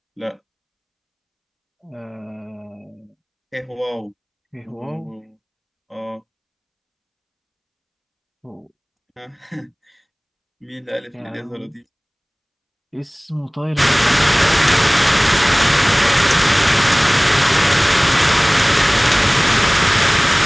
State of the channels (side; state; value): both; identical; correlation 1.00